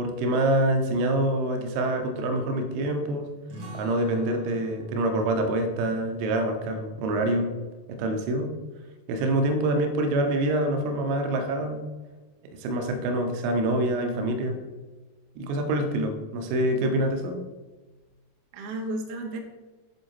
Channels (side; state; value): left; late; 28 ms